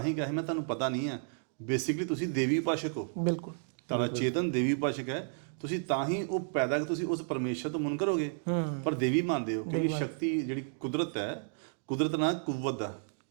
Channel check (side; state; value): left; silent; digital silence